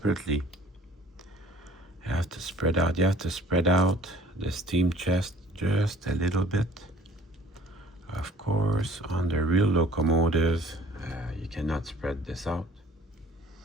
You have to spread out. You have to spread out the steam chest just a little bit. Of course, on the real locomotive, you cannot spread this out.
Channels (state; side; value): normal; both; correlation 0.53